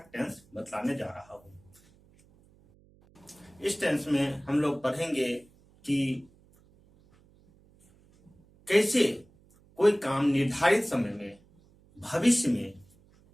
टेंस बतलाने जा रहा हूं। इस टेंस में हम लोग पढ़ेंगे कि कैसे कोई काम निर्धारित समय में भविष्य में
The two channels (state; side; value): noise; right; hum, 30 dB below the sound